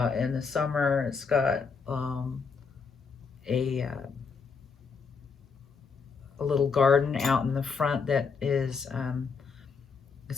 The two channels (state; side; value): quieter; right; 5.3 dB